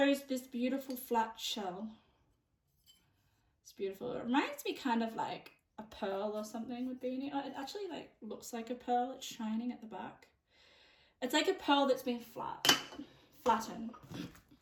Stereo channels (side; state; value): both; identical; correlation 1.00